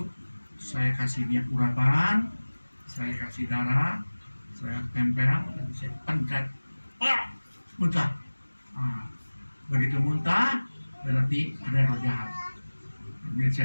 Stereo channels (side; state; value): both; inverted; correlation -1.00